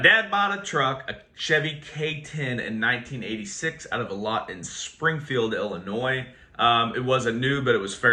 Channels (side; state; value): both; identical; correlation 1.00